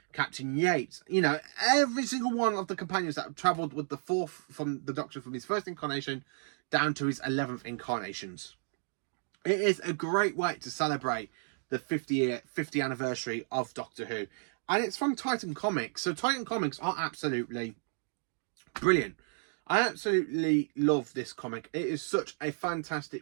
Captain Yates. You know, every single one of the companions that have travelled with the fourth from the Doctor from his first incarnation down to his 11th incarnations. It is a great way to celebrate the 50th anniversary of Doctor Who. And it's from Titan Comics. So Titan Comics are absolutely brilliant. I absolutely love this comic. It is such a fantastic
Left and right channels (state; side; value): silent; left; digital silence